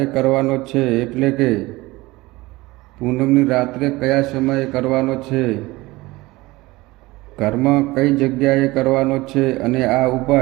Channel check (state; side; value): quieter; left; 20.5 dB